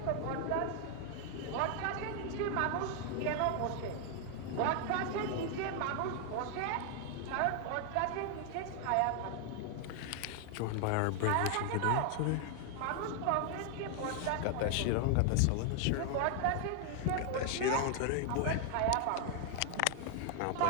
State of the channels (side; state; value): both; different; correlation 0.00